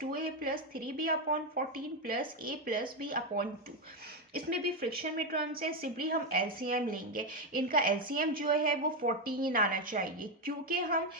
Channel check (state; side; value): normal; both; correlation 0.07